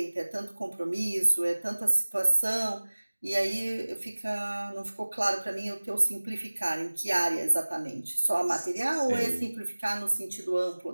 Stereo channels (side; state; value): both; inverted; correlation -1.00